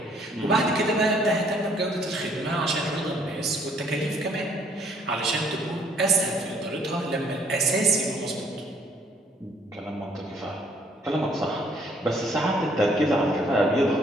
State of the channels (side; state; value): both; normal; correlation 0.63